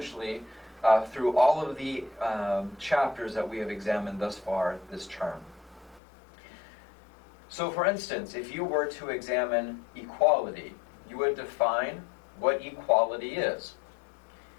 through all of the chapters that we have examined thus far this term. So for instance, if you were to examine equality, you would define what equality is.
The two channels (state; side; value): drops out; right; at 6.0 s